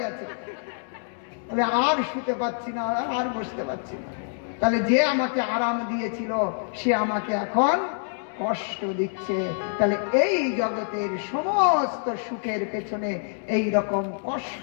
গেছে, তাহলে আর শুতে পাচ্ছি না, আর বসতে পাচ্ছি না। তাহলে যে আমাকে আরাম দিয়েছিল সে আমাকে এখন কষ্ট দিচ্ছে। তাহলে এই জগতের সমস্ত সুখের পেছনে এই রকম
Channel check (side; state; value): right; silent; digital silence